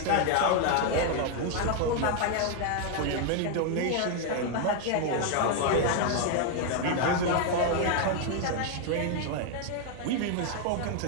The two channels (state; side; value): different; both; correlation 0.01